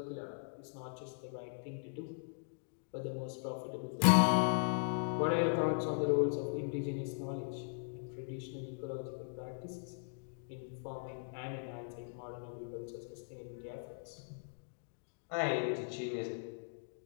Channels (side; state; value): right; silent; digital silence